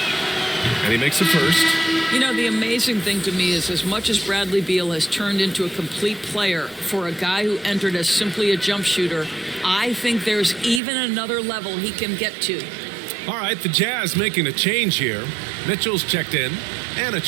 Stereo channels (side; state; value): left; drops out; at 10.8 s